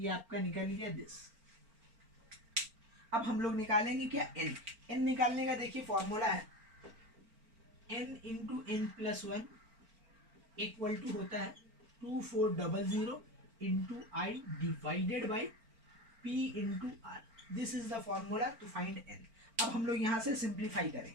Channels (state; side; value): late; left; 4.4 ms